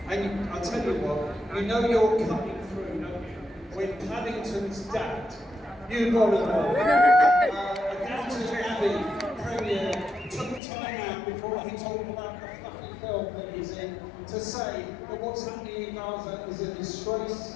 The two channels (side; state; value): right; drops out; at 10.6 s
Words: And I'll tell you what, you know you're cutting through, don't you? When Paddington's dad, you got to know, Downton Abbey Premier took time out before he talked about the fluffy film that he's in to say that what's happening in Gaza is a disgrace.